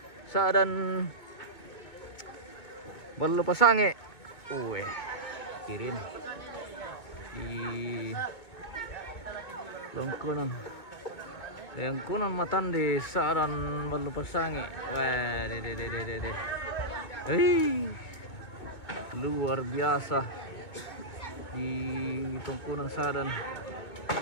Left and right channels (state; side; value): late; right; 2.2 ms